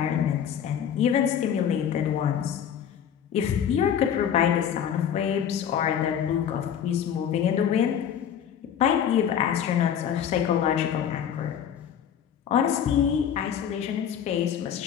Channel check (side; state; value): right; quieter; 8.8 dB